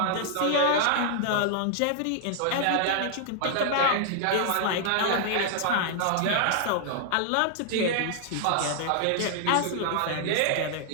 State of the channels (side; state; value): both; different; correlation -0.01